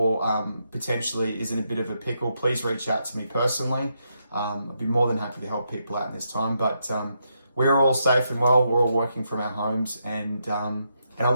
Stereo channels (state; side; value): inverted; both; correlation -0.81